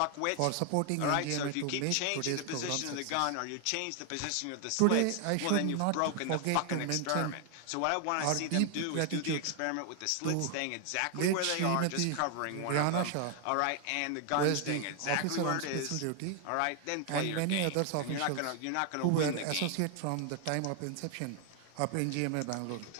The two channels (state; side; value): different; both; correlation 0.00